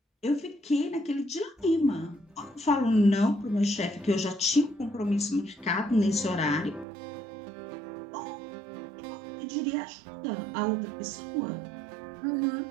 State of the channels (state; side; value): drops out; left; at 6.9 s